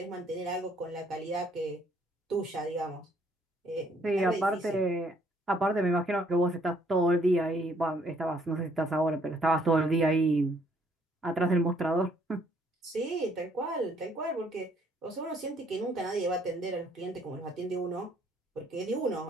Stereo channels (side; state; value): both; normal; correlation 0.66